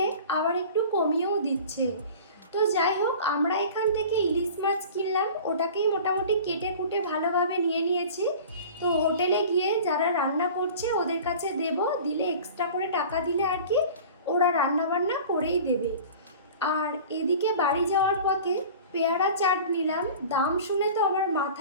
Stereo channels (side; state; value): both; inverted; correlation -0.40